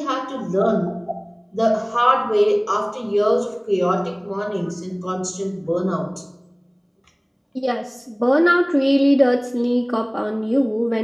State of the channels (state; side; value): identical; both; correlation 1.00